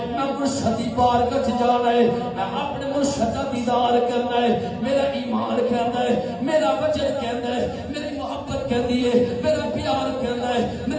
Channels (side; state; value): both; identical; correlation 1.00